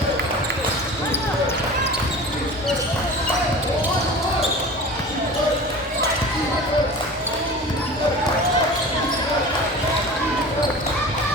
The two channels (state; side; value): normal; both; correlation 0.37